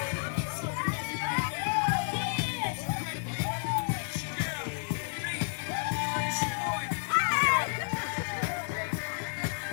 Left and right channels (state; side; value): silent; right; digital silence